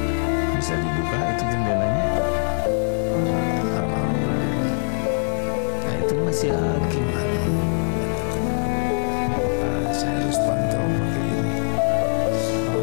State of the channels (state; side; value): silent; right; digital silence